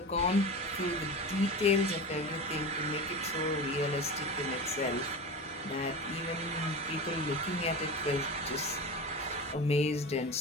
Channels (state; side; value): normal; both; correlation 0.28